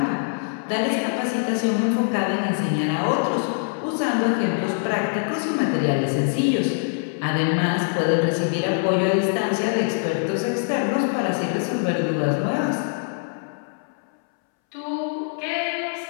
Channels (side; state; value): right; silent; 63 dB below the other